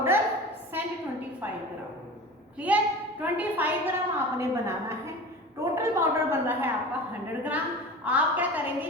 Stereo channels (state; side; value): normal; both; correlation 0.34